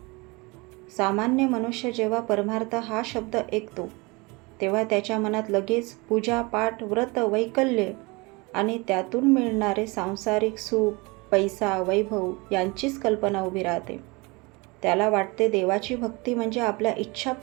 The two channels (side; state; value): left; quieter; 26.0 dB